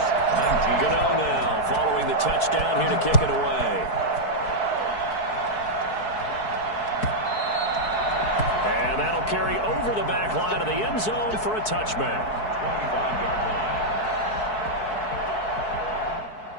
19. Gano now following the touchdown here to kick it away. And that'll carry over the back line of the end zone for a touchback. 25-yard line.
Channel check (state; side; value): late; right; 4.6 ms